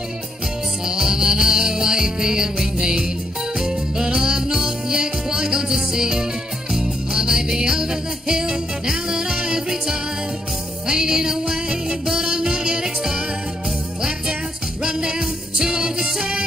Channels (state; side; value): normal; both; correlation 0.75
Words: So I'm an OAP and we mean, but I'm not yet quite gone to sea. I may be over the hill now that I have retired, fading away, but I'm not yet expired. Clapped out, run down, too old to